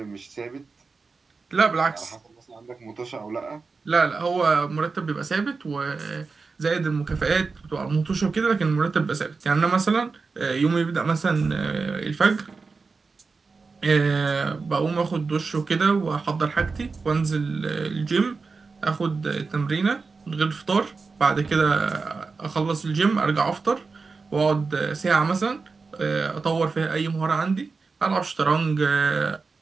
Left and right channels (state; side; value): quieter; left; 4.4 dB